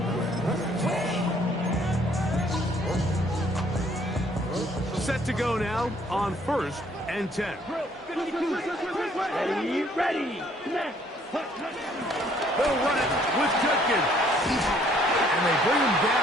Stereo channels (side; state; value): both; normal; correlation 0.63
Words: Set to go now on 1st and 10. Ready. They'll run it with Judkins. And they bring him